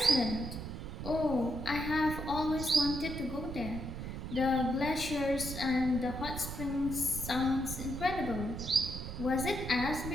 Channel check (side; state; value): right; noise; rumble, 7 dB below the sound